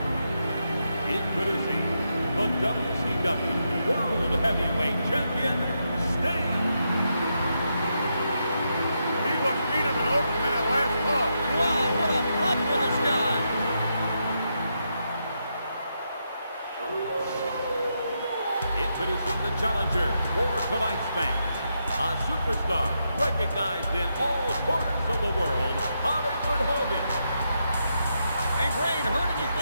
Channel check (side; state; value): both; inverted; correlation -0.83